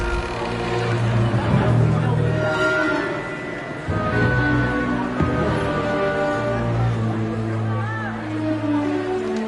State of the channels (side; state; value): both; identical; correlation 1.00